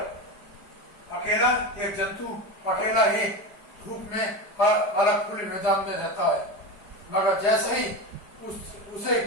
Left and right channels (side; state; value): right; late; 4.9 ms